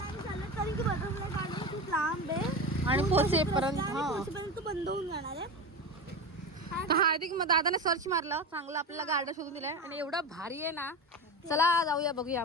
खूप लांब आहे आणि पोचेपर्यंत बंद होऊन जाणार आहे. हार्दिक मग दादाने सर्च मारलं, चांगलं आपल्याला गार्डन शोधून दिलंय. आणि एवढं भारी आहे ना. चला जाऊया, बघूया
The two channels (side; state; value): both; normal; correlation 0.24